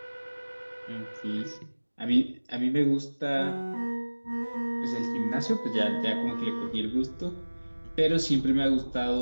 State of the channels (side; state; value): both; inverted; correlation -1.00